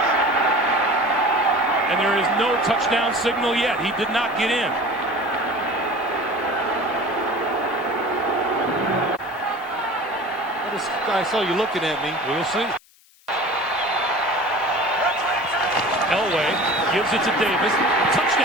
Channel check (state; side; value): noise; left; hiss, 29 dB below the sound